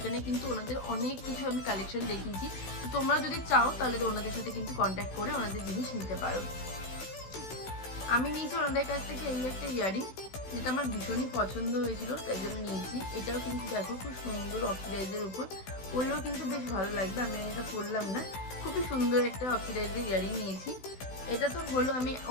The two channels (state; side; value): late; right; 16 ms